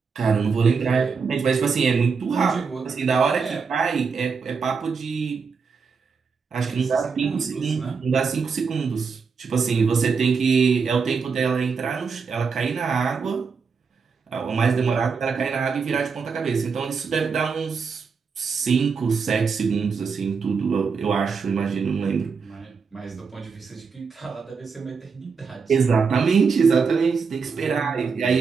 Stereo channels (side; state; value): left; quieter; 5.4 dB